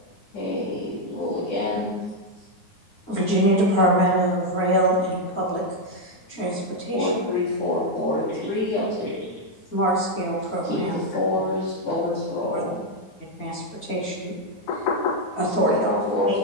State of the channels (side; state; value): right; late; 9.4 ms